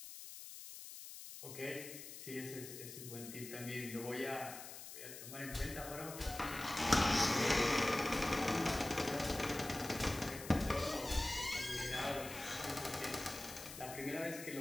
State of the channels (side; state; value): left; noise; hiss, 11 dB below the sound